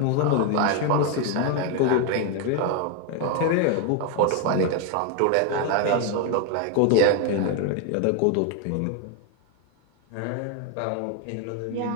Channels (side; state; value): both; different; correlation 0.01